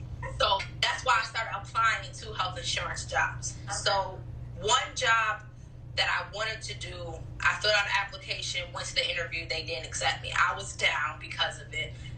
So that's why I started applying to health insurance jobs. Okay. So one job that I wanted to do, I filled out an application. Went to the interview, they didn't accept me. I was down because of it.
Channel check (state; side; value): identical; both; correlation 1.00